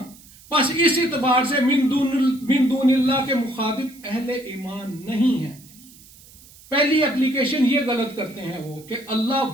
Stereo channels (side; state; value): right; noise; hiss, 23 dB below the sound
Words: بس اس اعتبار سے من دون اللہ کے مخاطب اہل ایمان نہیں ہیں۔ پہلی اپلیکیشن یہ غلط کرتے ہیں وہ کہ اللہ